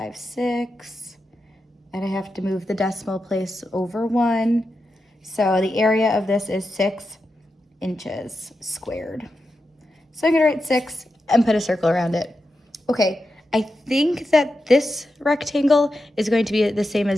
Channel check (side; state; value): both; normal; correlation 0.89